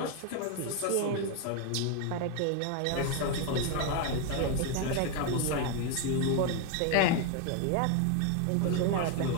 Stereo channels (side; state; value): both; different; correlation 0.01